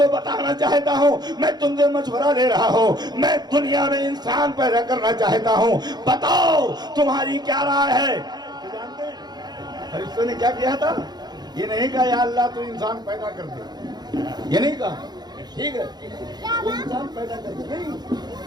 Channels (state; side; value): late; left; 0.20 ms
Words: بتانا چاہتا ہوں، میں تم سے مشورہ لے رہا ہوں، میں دنیا میں انسان پیدا کرنا چاہتا ہوں، بتاؤ تمہاری کیا رائے ہے؟ جانتے ہیں فرشتوں نے کیا کیا تھا؟ یہ نہیں کہا یا اللہ تو انسان پیدا کر دے، یہ نہیں کہا ٹھیک ہے تو انسان پیدا کر دے، نہیں،